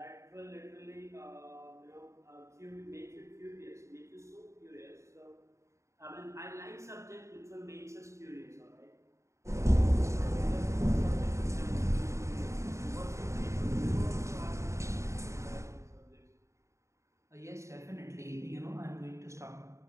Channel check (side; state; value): left; late; 0.14 ms